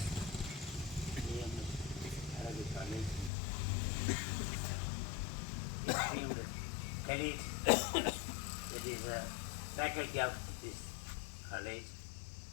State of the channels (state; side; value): drops out; right; at 3.3 s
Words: EMS Arabic College, esteemed colleagues, that is a faculty of this college,